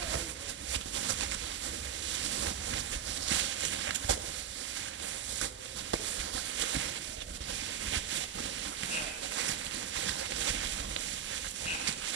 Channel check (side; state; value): left; quieter; 9.0 dB